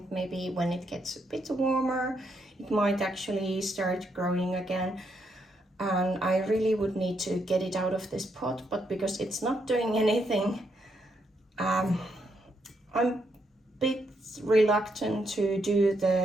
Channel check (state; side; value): normal; both; correlation 0.78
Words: Maybe when it gets a bit warmer, it might actually start growing again. And I really would need to get it out of this pot, but because it's not doing anything, I'm a bit reluctant to do